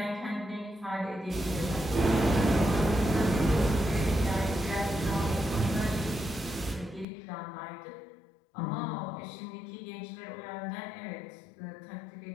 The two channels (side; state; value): right; drops out; at 7.1 s